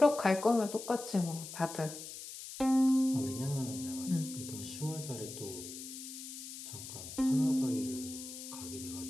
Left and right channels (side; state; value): left; noise; hiss, 11 dB below the sound